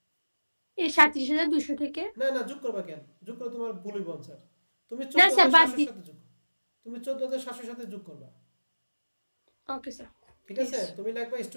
এই 37,200 থেকে না না, যোগ করবা কেন? যোগ করে তোমার ভুল হইব স্যার। তুমি না স্যার, বাদ 14700 সাথে যোগ, তুমি 14700 সাথে যোগ করবা। ওকে স্যার ঠিক আছে, তুমি লাগবা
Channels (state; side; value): inverted; both; correlation -1.00